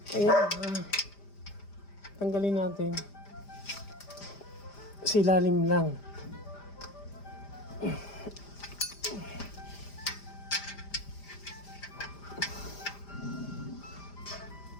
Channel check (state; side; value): late; right; 5.0 ms